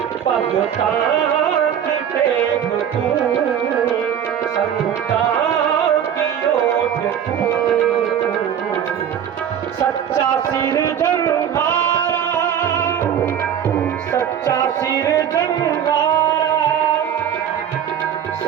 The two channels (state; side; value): quieter; left; 9.1 dB